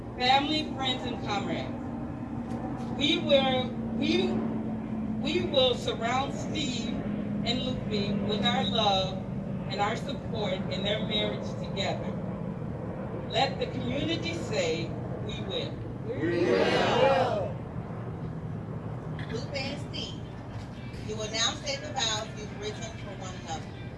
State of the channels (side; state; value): both; identical; correlation 1.00